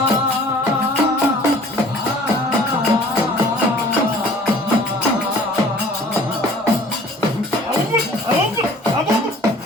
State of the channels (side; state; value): both; normal; correlation 0.50